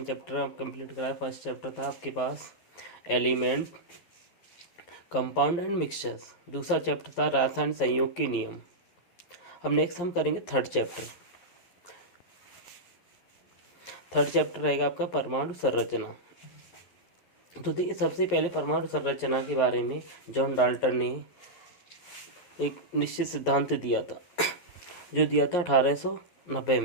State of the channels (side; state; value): right; late; 11 ms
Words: चैप्टर कंप्लीट कराया। फर्स्ट चैप्टर था आपके पास एलिमेंट, कंपाउंड एंड मिक्सचर्स। दूसरा चैप्टर था रासायनिक संयोग के नियम। अब नेक्स्ट हम करेंगे थर्ड चैप्टर। थर्ड चैप्टर रहेगा आपका परमाणु संरचना। तो देखिए, सबसे पहले परमाणु संरचना के बारे में जॉन डाल्टन ने एक निश्चित सिद्धांत दिया था, जो दिया था 1890